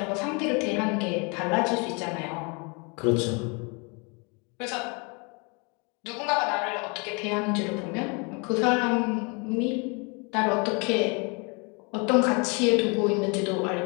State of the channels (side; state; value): right; quieter; 32.0 dB